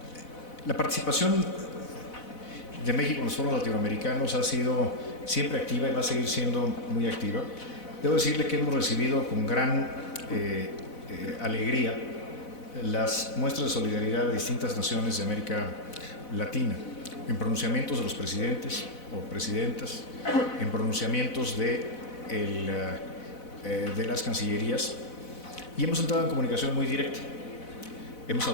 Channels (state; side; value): late; right; 4.0 ms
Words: La participación de México en los foros latinoamericanos ha sido siempre activa y va a seguir siendo muy activa. Debo decirle que hemos recibido con gran alegría las muestras de solidaridad de distintas naciones de América Latina, en pronunciamientos de los presidentes o presidentas, en pronunciamientos de las cancillerías, y hemos entrado en comunicación muy directa. Hemos